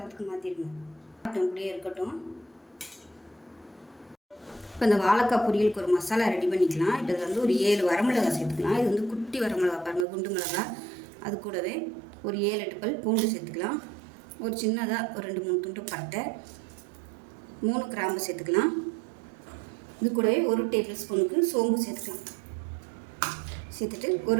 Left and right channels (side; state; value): left; drops out; at 10.1 s